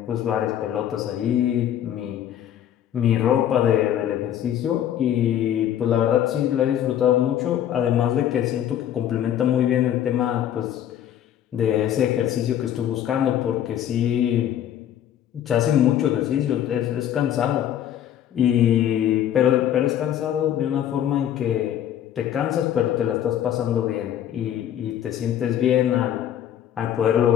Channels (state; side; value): quieter; right; 10.7 dB